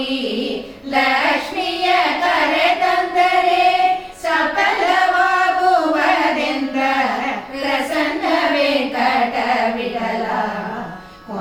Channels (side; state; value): both; identical; correlation 1.00